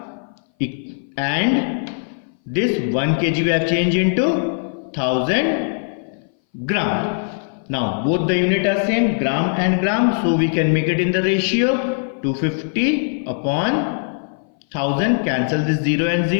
and this 1 kg we have changed into 1000 gram. Now both the unit are same, gram and gram, so we can make it in the ratio 250 upon 1000. Cancel this 0 and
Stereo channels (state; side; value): silent; right; 60 dB below the other